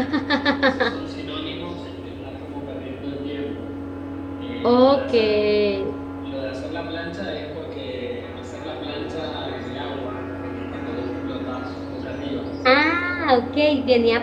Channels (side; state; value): both; identical; correlation 1.00